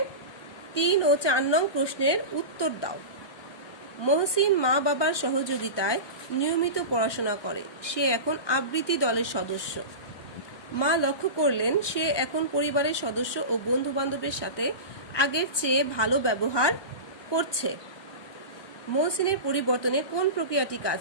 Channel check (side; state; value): right; late; 1.2 ms